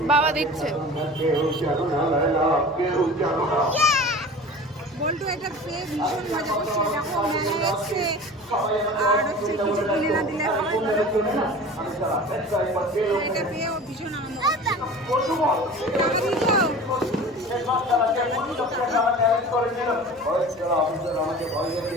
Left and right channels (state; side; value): noise; left; hum, 29 dB below the sound